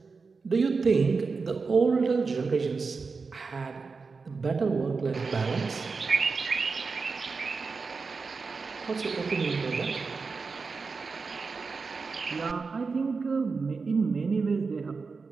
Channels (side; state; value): left; quieter; 4.6 dB